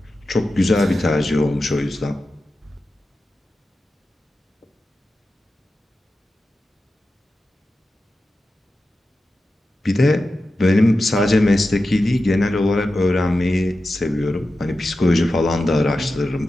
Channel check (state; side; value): normal; both; correlation 0.92